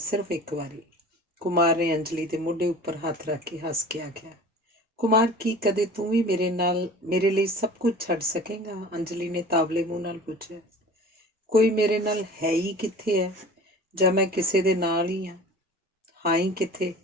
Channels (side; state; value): both; normal; correlation 0.41